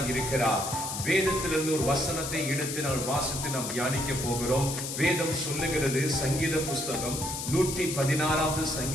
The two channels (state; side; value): noise; left; hiss, 5 dB below the sound